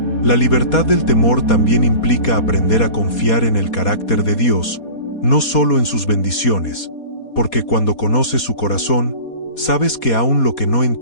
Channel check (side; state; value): right; late; 4.2 ms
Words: La libertad del temor también implica aprender a confiar en el carácter de Dios, no solo en sus bendiciones, porque cuando conoces su corazón, sabes que aún lo que no